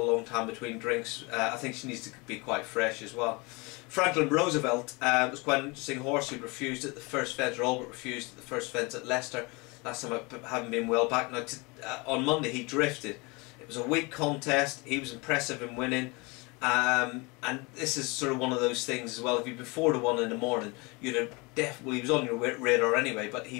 long time between drinks. I think she needs to be quite fresh as well. Franklin Roosevelt was quite an interesting horse who refused at the first fence, or Albert refused at the first fence at Leicester. Last time I haven't been well back. Now on Monday he drifted. It was a weak contest, he was impressive in winning. And this is sort of one of those things as well. If you'd been 4 to 1 in the morning, you'd have definitely, he was on your radar anyway, but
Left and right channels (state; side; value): quieter; right; 27.1 dB